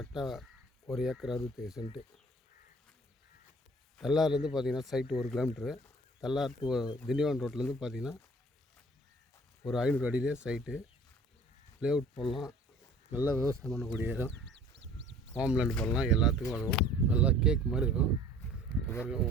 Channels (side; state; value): both; normal; correlation 0.50